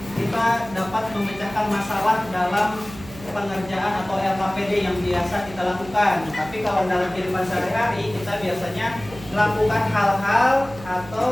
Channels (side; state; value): right; noise; hum, 17 dB below the sound